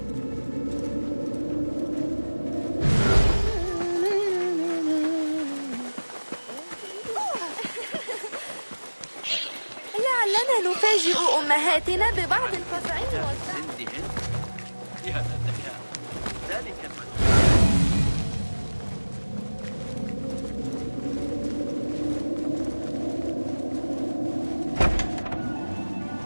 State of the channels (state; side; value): inverted; both; correlation -1.00